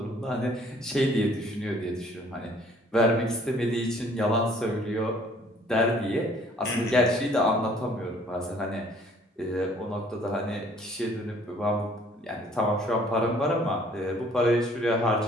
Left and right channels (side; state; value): both; normal; correlation 0.58